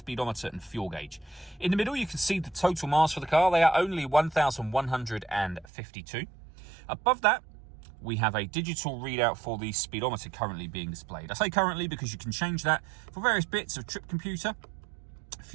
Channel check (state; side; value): drops out; left; at 5.7 s